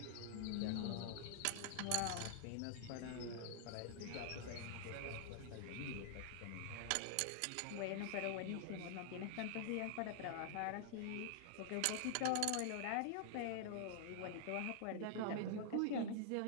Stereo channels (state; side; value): different; both; correlation -0.01